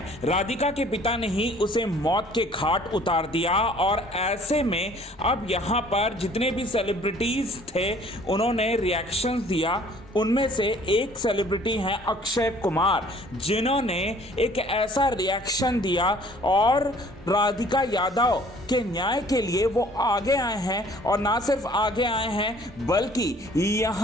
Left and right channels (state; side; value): normal; both; correlation 0.55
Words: राधिका के पिता ने ही उसे मौत के घाट उतार दिया और ऐसे में अब यहाँ पर जितने भी सेलिब्रिटीज थे उन्होंने रिएक्शन दिया। उनमें से एक सेलिब्रिटी हैं अक्षय कुमार, जिन्होंने एक ऐसा रिएक्शन दिया और राधिका यादव के न्याय के लिए वो आगे आए हैं। और ना सिर्फ आगे आए हैं बल्कि